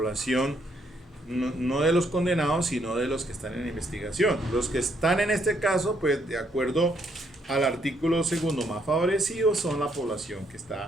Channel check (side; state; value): both; normal; correlation 0.72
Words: no de los condenados, sino de los que están en investigación. Los que están en este caso, pues de acuerdo al artículo segundo más favorecido, son la población que